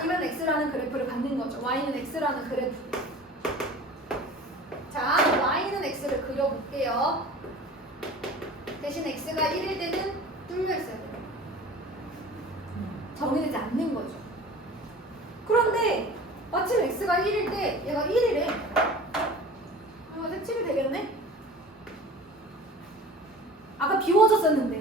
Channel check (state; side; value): normal; both; correlation 0.40